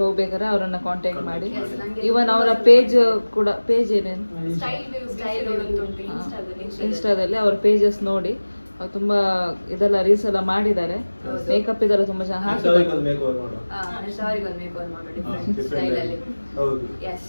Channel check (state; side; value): inverted; both; correlation -1.00